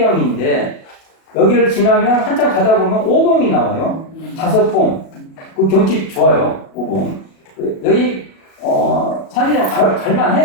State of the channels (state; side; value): late; right; 37 ms